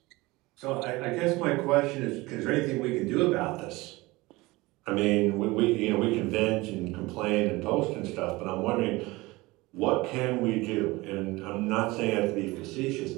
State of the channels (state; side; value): quieter; left; 21.5 dB